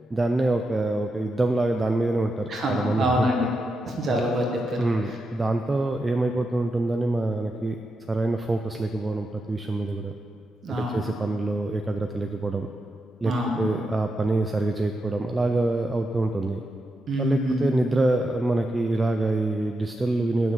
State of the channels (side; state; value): both; normal; correlation 0.86